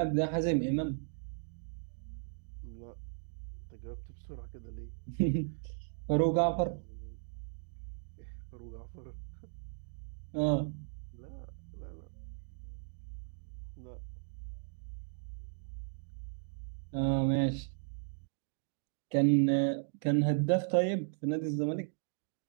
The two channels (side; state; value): left; silent; digital silence